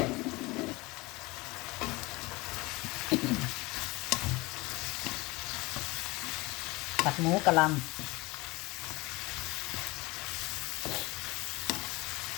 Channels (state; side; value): quieter; right; 23.1 dB